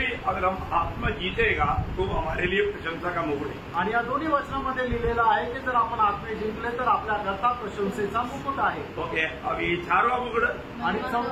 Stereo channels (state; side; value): identical; both; correlation 1.00